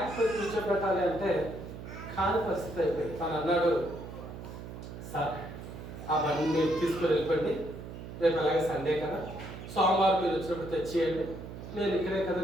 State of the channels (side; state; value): right; noise; hum, 11 dB below the sound